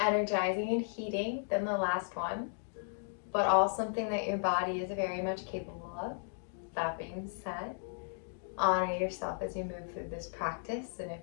and heating than the last one, but all something that your body is very much capable of. That being said, honor yourself as you move through this practice, and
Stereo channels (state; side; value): silent; right; digital silence